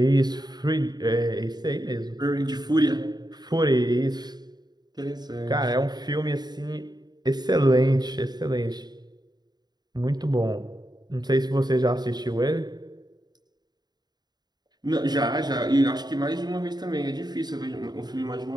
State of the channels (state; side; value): late; left; 0.20 ms